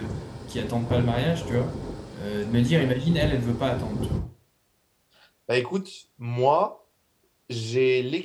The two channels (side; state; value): both; identical; correlation 1.00